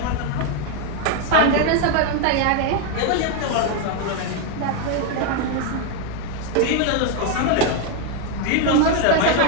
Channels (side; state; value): both; different; correlation 0.01